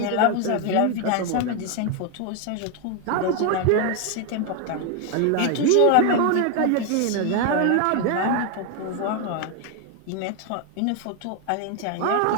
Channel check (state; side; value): different; both; correlation 0.01